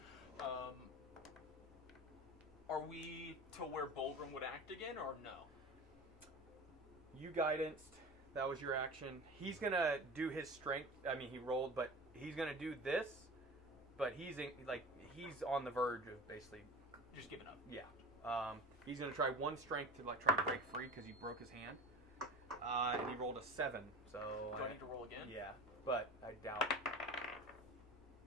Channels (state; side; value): normal; both; correlation 0.34